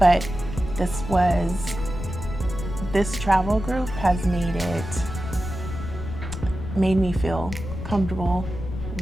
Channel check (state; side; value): noise; left; rumble, 8 dB below the sound